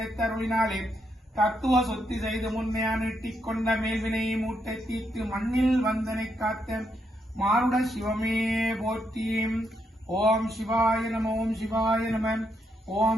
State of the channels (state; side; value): normal; both; correlation 0.79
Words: தத்துவ சொத்தி செய்து முன்னையா நீட்டிக் கொண்ட மேல்வினை மூட்டை தீர்த்து மண்ணில் வந்தனை காத்த மாருட சிவமே போற்றி. ஓம் சிவாய நம ஓம் சிவாய நம